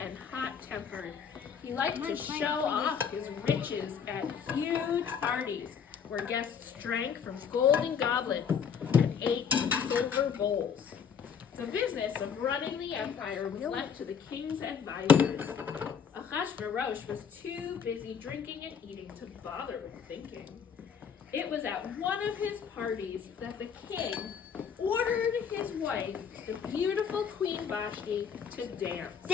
hot-tempered. He liked to show off his riches at huge parties where guests drank from golden goblets and ate from silver bowls. The business of running the empire was left to the king's advisors. Ahasuerus was too busy drinking and eating to bother with thinking. It was at one of his parties that the king ordered his wife, the beautiful Queen Vashti, to dance.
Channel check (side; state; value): right; quieter; 7.1 dB